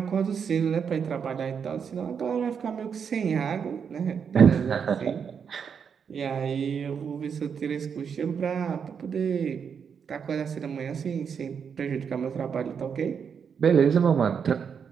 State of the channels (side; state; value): left; quieter; 6.9 dB